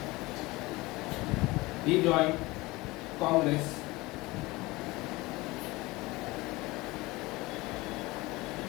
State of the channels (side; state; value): right; quieter; 21.5 dB